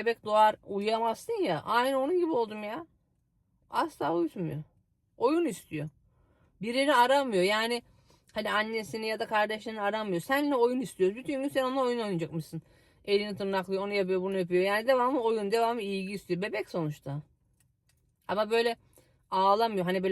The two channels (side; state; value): both; identical; correlation 1.00